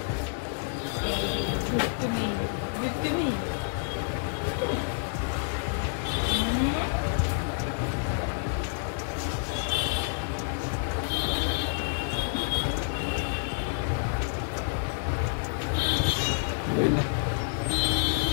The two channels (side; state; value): right; silent; digital silence